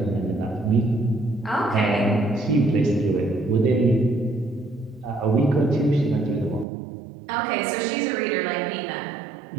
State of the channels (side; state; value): left; drops out; at 6.7 s